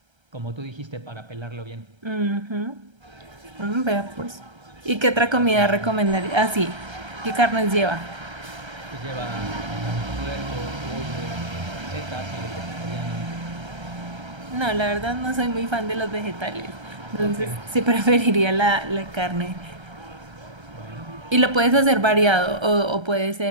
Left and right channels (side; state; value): left; late; 1.3 ms